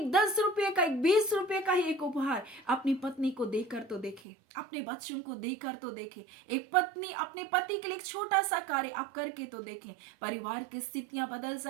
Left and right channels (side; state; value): left; drops out; at 4.2 s